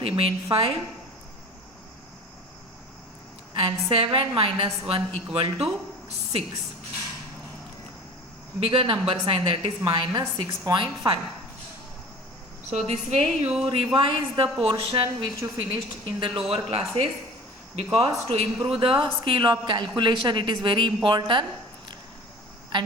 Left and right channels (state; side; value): normal; both; correlation 0.41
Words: remain 5, and 7 minus 1 equal to 6. Bigger number sign, that is minus 6.5. So this way you revise the portion which you finished in the lower classes, because to improve the skill of calculation it is very important,